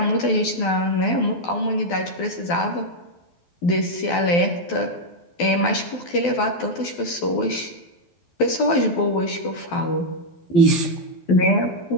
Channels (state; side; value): late; right; 12 ms